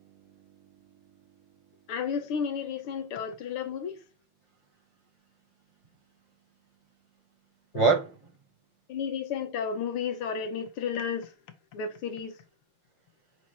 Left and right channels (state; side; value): late; right; 5.7 ms